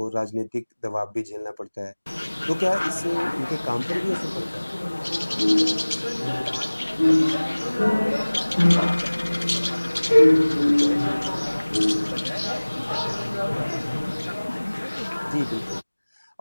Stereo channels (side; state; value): both; inverted; correlation -1.00